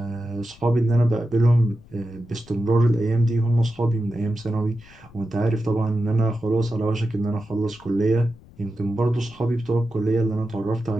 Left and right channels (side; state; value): left; noise; rumble, 24 dB below the sound